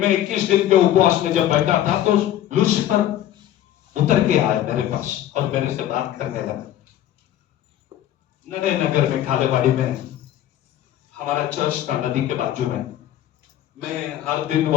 21 दिन के उपवास में जब बैठा था तो लूसीफर उतर के आया मेरे पास और मेरे से बात करने लगा। नडे नगर में खालेवाड़ी में हमारा चर्च था, नदी के बाजू में। मैं हर दिन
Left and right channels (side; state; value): right; quieter; 12.2 dB